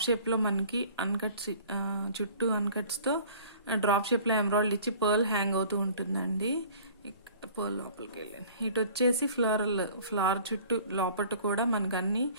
షేప్లో మనకి అన్కట్స్, చుట్టూ అన్కట్స్తో డ్రాప్ షేప్లో ఎమరాల్డ్ ఇచ్చి పర్ల్ హ్యాంగ్ అవుతూ ఉంటుందండి. పర్ల్ లోపలికి వెళ్ళాను. ఇటు వచ్చేసి ఫ్లవర్ చుట్టూ లోపల కూడా మనకు అన్ని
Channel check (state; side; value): inverted; both; correlation -0.49